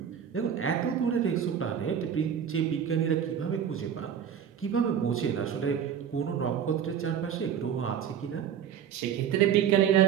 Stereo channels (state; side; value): quieter; left; 8.5 dB